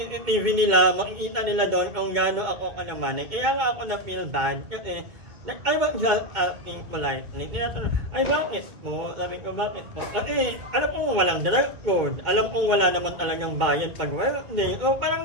nila, makikita nila doon kung gaano ako kalamanay. Kaya nga ako na-feel bad kasi I was just asking politely. Tinatanong, bakit po? Sabi ko, bakit po? Kasi, alam kong walang dress code. Alam kong wala naman talagang bayad pag Wednesday. So, parang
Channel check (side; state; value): left; late; 2.2 ms